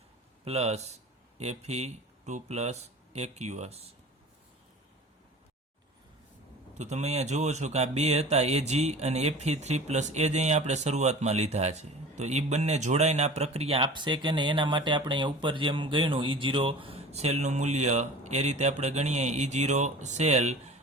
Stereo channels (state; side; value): normal; both; correlation 0.40